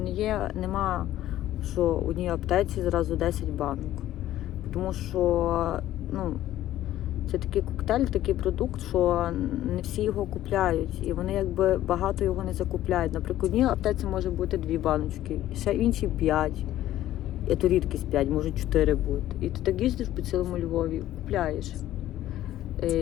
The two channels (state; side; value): quieter; right; 13.6 dB